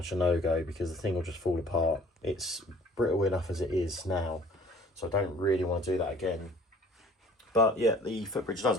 a no-go because the thing will just fall apart. It's brittle enough as it is now, so I don't really want to do that again. But yeah, the footbridge does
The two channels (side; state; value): both; normal; correlation 0.52